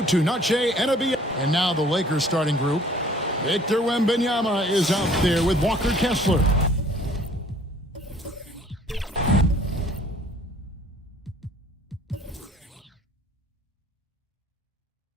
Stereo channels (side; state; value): both; normal; correlation 0.55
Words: to Noche NBA. And now the Lakers starting group. Victor Wembanyama is out there with Walker Kessler.